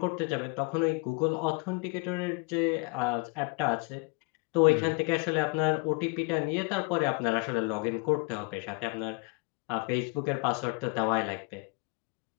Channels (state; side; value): quieter; right; 29.3 dB